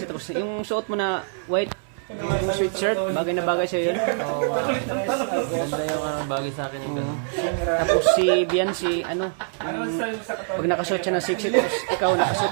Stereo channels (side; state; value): left; silent; digital silence